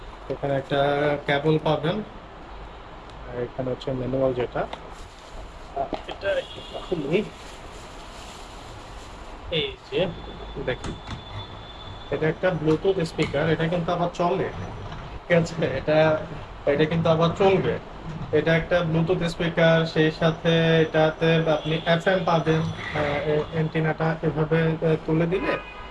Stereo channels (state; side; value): identical; both; correlation 1.00